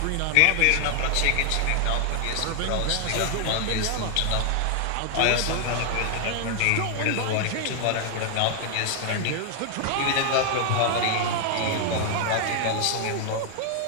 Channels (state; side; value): different; both; correlation 0.00